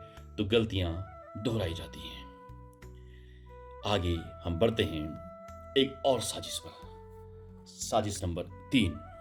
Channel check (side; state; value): both; identical; correlation 1.00